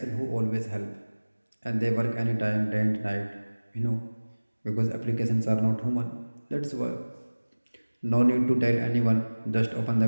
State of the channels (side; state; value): both; inverted; correlation -1.00